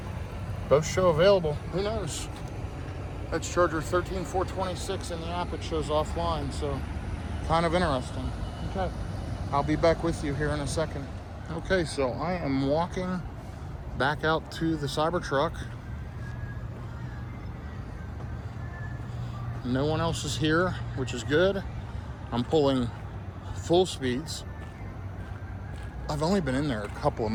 Both show available. Who knows? That's charger 13426 in the app. It shows offline, so kind of interesting. Okay, I'll be back with you here in a second. Okay, so I am walking back out to the Cybertruck. No one else is here, which is good. I'm pulling full speeds. I've only been in there a couple of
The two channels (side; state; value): both; identical; correlation 1.00